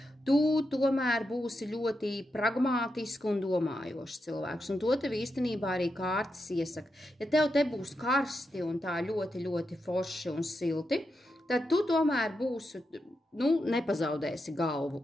Tu tomēr būsi ļoti pragmātiski un domājošs cilvēks, un to tev īstenībā arī kārtas iesaka. Ja tev te būs karsti un tā ļoti, ļoti forši un silti, tad tu tomēr būsi, nepazaudēsi galvu,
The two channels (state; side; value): normal; both; correlation 0.86